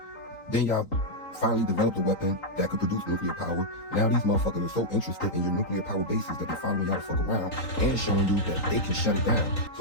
Then y'all finally developed a weapon that could produce nuclear power. Now these motherfuckers are so interested in your nuclear power bases that they're following y'all to fuck around and showing you that they can shut it down.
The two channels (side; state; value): right; late; 3.8 ms